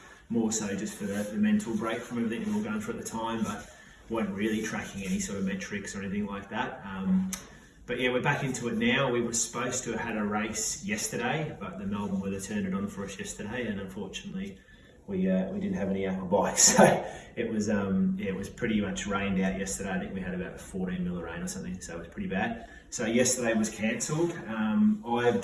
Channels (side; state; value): both; identical; correlation 1.00